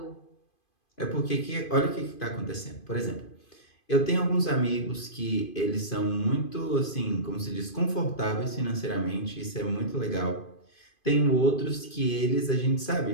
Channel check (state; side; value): late; right; 2.5 ms